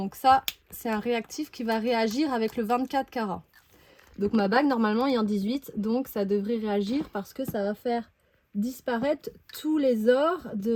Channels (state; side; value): identical; both; correlation 1.00